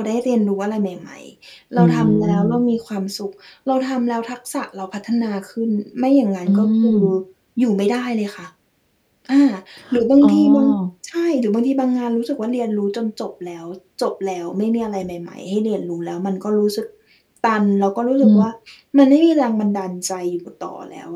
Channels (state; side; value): identical; both; correlation 1.00